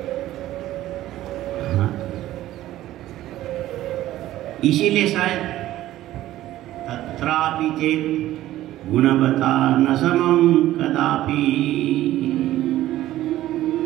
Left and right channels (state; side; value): quieter; left; 14.5 dB